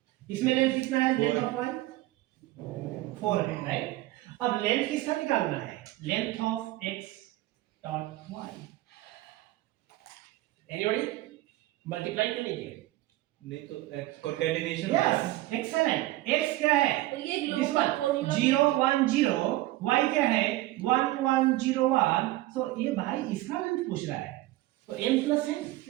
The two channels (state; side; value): quieter; left; 17.3 dB